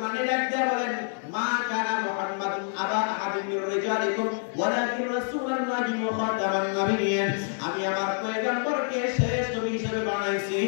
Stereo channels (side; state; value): right; silent; 60 dB below the other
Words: ডাকতে বলেন, মা কানা মুহাম্মাদুন আবা আহাদিন মির রিজালিকুম ওয়ালাকিন রাসূলুল্লাহি ওয়া খাতামান নাবিয়্যিন। আমি আমার পয়গম্বরকে শেষ নবী হিসেবে বানাইছি।